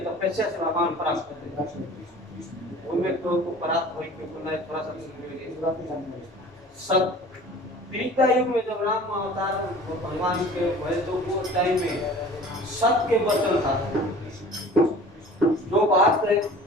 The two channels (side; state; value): both; normal; correlation 0.44